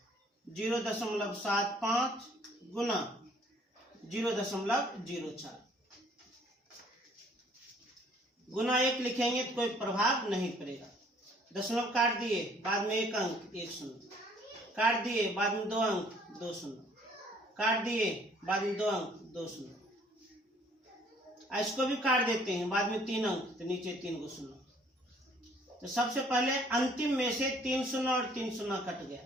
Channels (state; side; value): normal; both; correlation 0.59